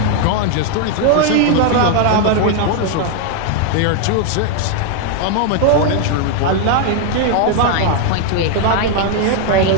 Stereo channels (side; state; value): both; different; correlation 0.00